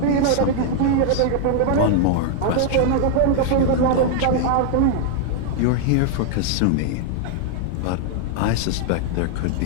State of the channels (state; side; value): different; both; correlation 0.00